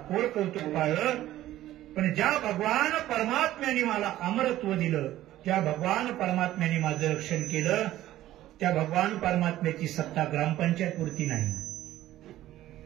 कोर कौतुक पाळलं. पण ज्या भगवान परमात्म्याने मला अमरत्व दिलं, ज्या भगवान परमात्म्याने माझं रक्षण केलं, त्या भगवान परमात्म्याची सत्ता ग्रामपंचायतपुरती नाही,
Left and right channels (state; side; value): quieter; left; 14.3 dB